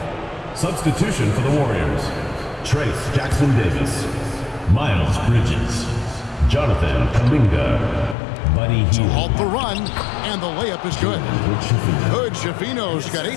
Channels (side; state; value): right; drops out; at 8.2 s